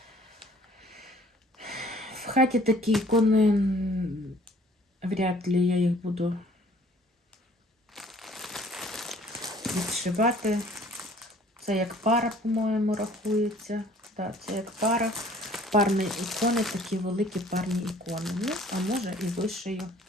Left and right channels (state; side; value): normal; both; correlation 0.55